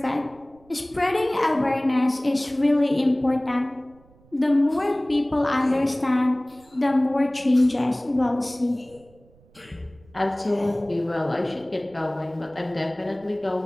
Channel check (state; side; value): noise; right; rumble, 29 dB below the sound